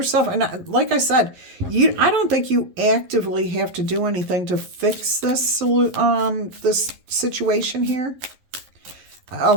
And like I said, I don't think you actively have to do anything to fix this situation here. A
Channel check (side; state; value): left; late; 11 ms